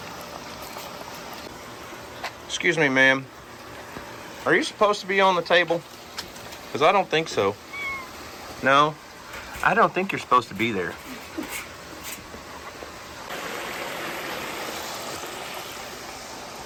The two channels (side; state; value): both; identical; correlation 1.00